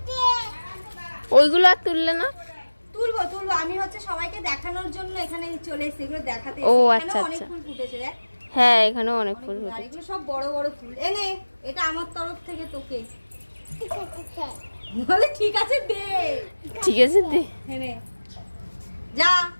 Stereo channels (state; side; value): inverted; both; correlation -1.00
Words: ওইগুলো আর তুললে না? তুলবো তুলবো, আমি হচ্ছে সবাইকে দেখানোর জন্য এখানে চলে এসেছি, এগুলো দেখাতে। ও এখানে আচ্ছা অনেক আচ্ছা। ফুল ফুটেছে দেখ। হ্যাঁ, এখানেও অনেক ফুল আর ফুটেছে। এগুলো সব বড় বড় ফুল। এনে এটা আমার তরফ থেকে তোকে। বলে ঠিক আছে দে। ঠিক আছে দে। এনে যা,